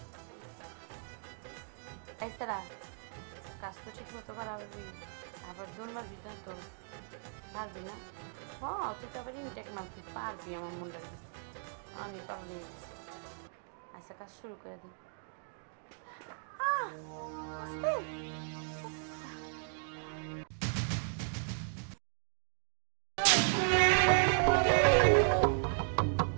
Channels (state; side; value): silent; left; digital silence